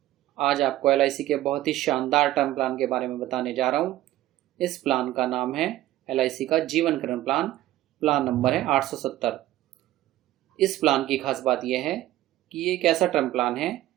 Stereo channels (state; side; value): quieter; left; 15.0 dB